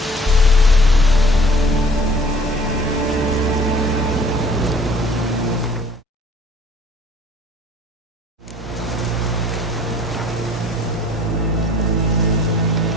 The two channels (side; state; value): both; normal; correlation 0.53